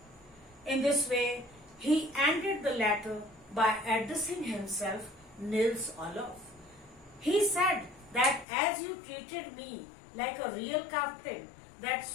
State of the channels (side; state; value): right; drops out; at 8.5 s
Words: In this way, he ended the letter by addressing himself Nils Olof. He said that as you treated me like a real captain,